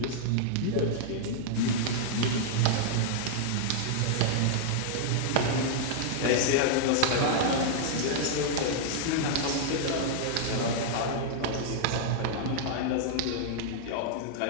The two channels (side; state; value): both; different; correlation -0.01